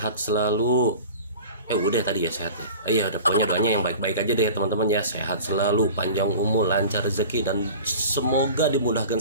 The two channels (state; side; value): inverted; both; correlation -0.38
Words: selalu. Udah tadi ya sehat ya. Iya, ada pokoknya doanya yang baik-baik aja deh teman-teman ya. Sehat selalu, panjang umur, lancar rezeki, dan semoga